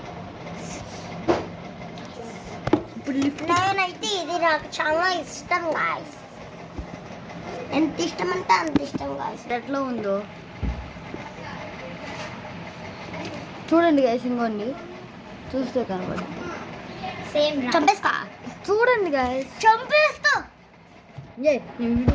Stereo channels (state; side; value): identical; both; correlation 1.00